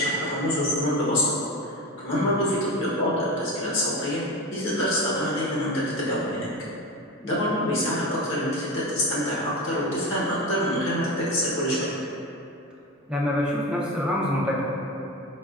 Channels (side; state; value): both; normal; correlation 0.24